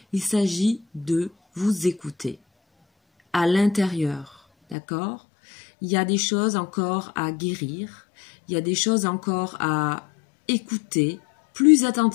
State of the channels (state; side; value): drops out; right; at 4.8 s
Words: il s'agit de vous écouter à l'intérieur, d'accord? Il y a des choses encore à guérir, il y a des choses encore à écouter plus